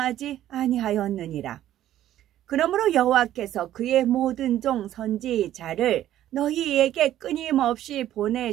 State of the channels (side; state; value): left; quieter; 12.5 dB